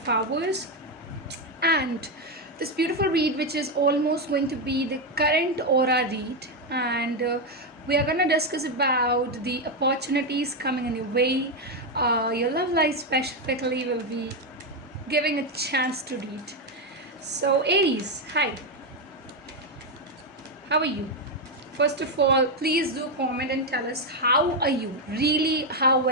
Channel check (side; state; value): both; normal; correlation 0.06